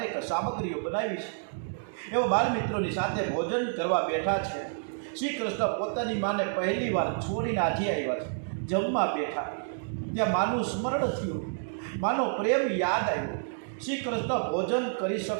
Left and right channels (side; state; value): left; silent; digital silence